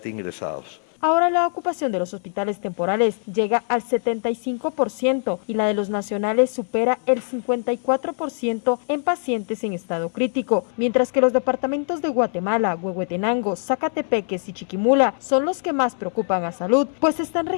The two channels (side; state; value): right; silent; 64 dB below the other